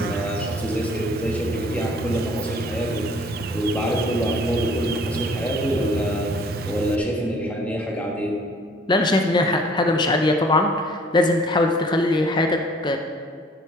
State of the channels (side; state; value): both; normal; correlation 0.55